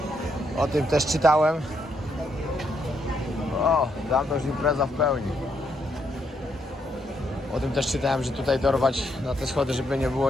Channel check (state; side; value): normal; both; correlation 0.76